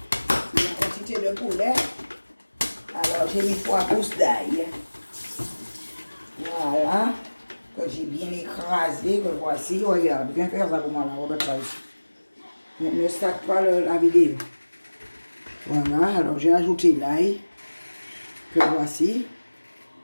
La quantité de poulet. Alors, j'ai mis 3 pousses d'ail. Voilà. Que j'ai bien écrasé. Que voici. Regarde, viens faire ça pour moi là, Robert Price. Ne stack pas la vidéo. Voilà, alors j'ai ajouté l'ail. Que voici.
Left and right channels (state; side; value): inverted; both; correlation -1.00